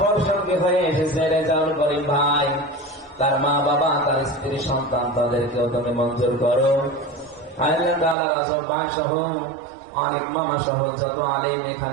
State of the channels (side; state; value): left; drops out; at 8.2 s